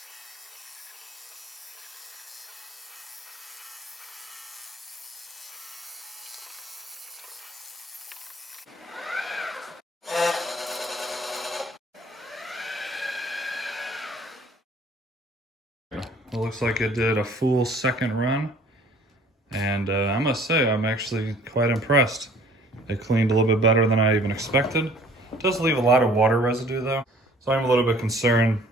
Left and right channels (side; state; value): both; normal; correlation 0.54